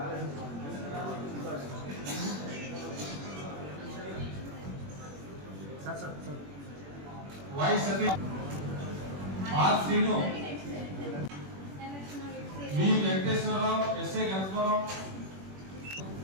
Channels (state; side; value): late; left; 21 ms